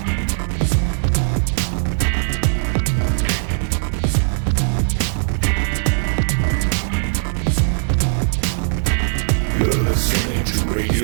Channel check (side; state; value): left; silent; digital silence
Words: You're listening to